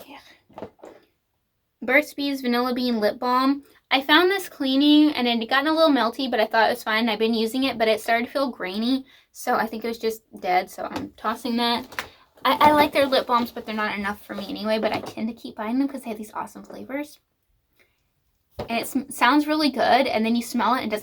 Yeah. Burt's Bees Vanilla Bean Lip Balm. I found this cleaning, and it had gotten a little melty, but I thought it was fine. I've been using it, but it started to feel grainy. So I think it was just dead, so I'm tossing that. I like their lip balms, but they're not enough for me anyway, but I tend to keep buying them because they have these awesome flavors. And it sounds really good, and then you smell it, and it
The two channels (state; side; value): identical; both; correlation 1.00